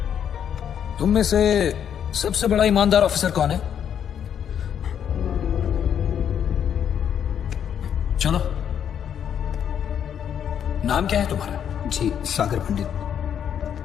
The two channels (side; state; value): right; quieter; 8.8 dB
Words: तुम में से सबसे बड़ा ईमानदार ऑफिसर कौन है? चलो नाम क्या है तुम्हारा? जी सागर पंडित।